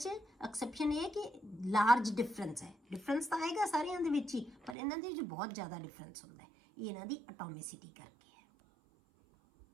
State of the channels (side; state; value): left; drops out; at 4.8 s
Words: ਐਕਸੈਪਸ਼ਨ ਇਹ ਹੈ ਕਿ ਲਾਰਜ ਡਿਫਰੈਂਸ ਹੈ। ਡਿਫਰੈਂਸ ਤਾਂ ਆਏਗਾ ਸਾਰਿਆਂ ਦੇ ਵਿੱਚ ਹੀ, ਪਰ ਇਹਨਾਂ ਦੇ ਵਿੱਚ ਬਹੁਤ ਜ਼ਿਆਦਾ ਡਿਫਰੈਂਸ ਹੁੰਦਾ ਹੈ। ਇਹ ਇਹਨਾਂ ਦੀ ਐਟੋਮਿਸਿਟੀ ਕਰਕੇ ਹੈ।